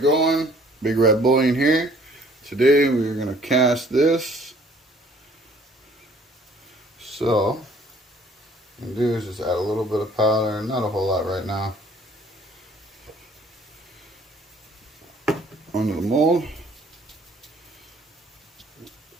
Big Red Bullion here. Today we're going to cast this. So, what I'm going to do is just add a little bit of powder, not a whole lot right now, onto the mold.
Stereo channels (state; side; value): normal; both; correlation 0.57